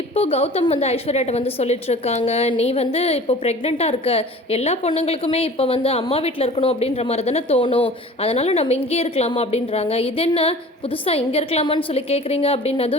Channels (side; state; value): both; normal; correlation 0.43